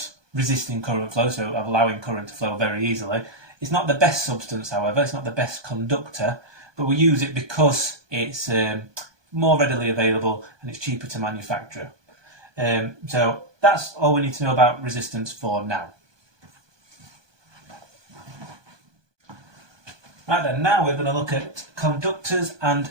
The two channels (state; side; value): late; left; 1.2 ms